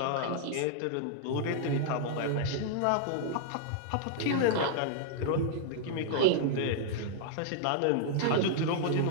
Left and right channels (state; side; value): different; both; correlation -0.01